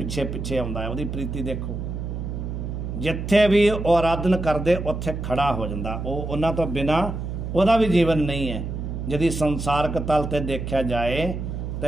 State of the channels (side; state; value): right; noise; hum, 5 dB below the sound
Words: ਪਿੱਛੇ ਆਉਂਦਾ ਹੈ। ਉਹਦੀ ਪ੍ਰੀਤੀ ਦੇਖੋ, ਜਿੱਥੇ ਵੀ ਉਹ ਆਰਾਧਨ ਕਰਦੇ ਉੱਥੇ ਖੜਾ ਹੋ ਜਾਂਦਾ। ਉਹ ਉਹਨਾਂ ਤੋਂ ਬਿਨਾ ਉਹਦਾ ਵੀ ਜੀਵਨ ਨਹੀਂ ਹੈ। ਜਦੀ ਸੰਸਾਰਕ ਤਲ ਤੇ ਦੇਖਿਆ ਜਾਏ